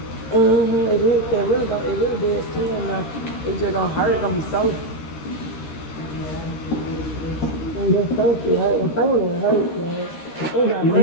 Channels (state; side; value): late; right; 13 ms